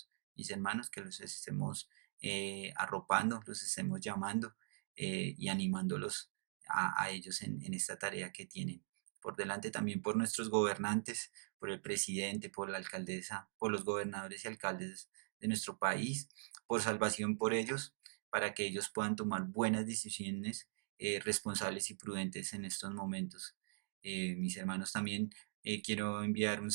Mis hermanos, que los estemos arropando, los estemos llamando y animándolos a ellos en esta tarea que tienen por delante, también por nuestros gobernantes, por el presidente, por la alcaldesa, por los gobernadores y alcaldes de nuestro país, por salvación por ellos, para que ellos puedan tomar buenas decisiones responsables y prudentes en estos momentos. Mis hermanos, también quiero enviar un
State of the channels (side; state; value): left; silent; digital silence